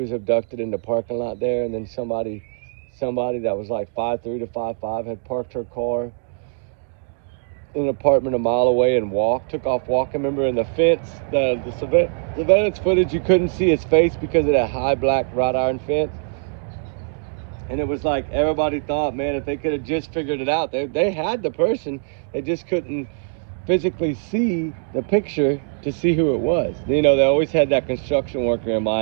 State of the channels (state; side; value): silent; left; digital silence